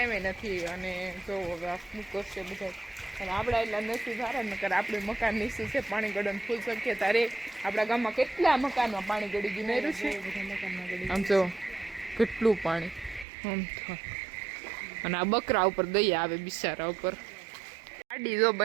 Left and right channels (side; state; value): left; drops out; at 13.2 s